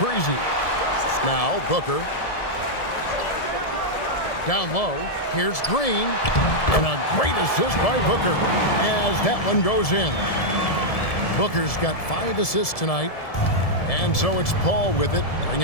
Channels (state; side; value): late; right; 1.7 ms